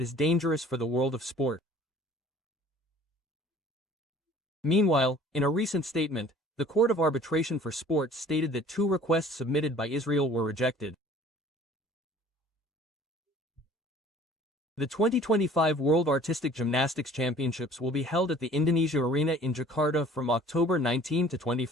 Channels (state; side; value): normal; both; correlation 0.50